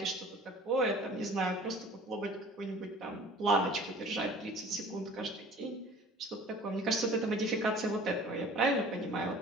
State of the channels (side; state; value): both; normal; correlation 0.46